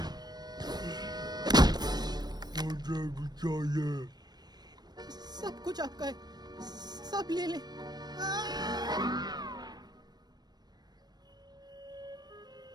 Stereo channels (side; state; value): left; late; 0.19 ms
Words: चाहिए। सब कुछ आपका है, सब ले ले।